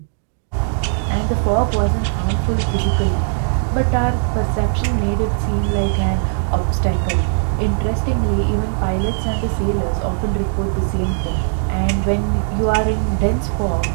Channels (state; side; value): silent; left; digital silence